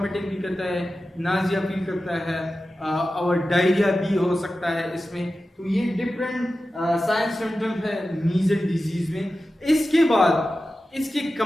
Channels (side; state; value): both; normal; correlation 0.94